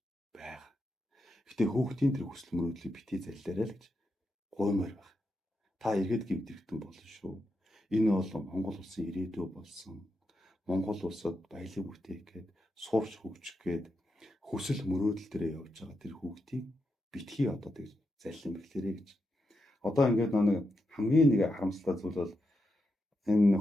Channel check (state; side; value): normal; both; correlation 0.85